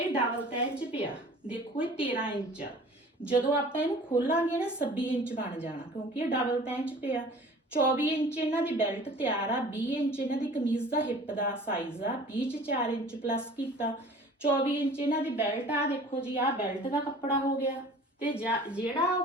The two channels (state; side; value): normal; both; correlation 0.46